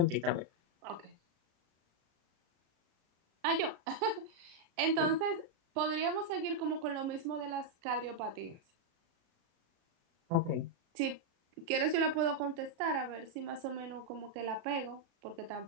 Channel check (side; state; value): left; late; 36 ms